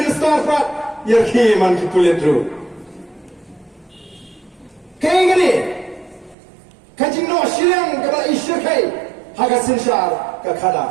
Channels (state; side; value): drops out; left; at 6.4 s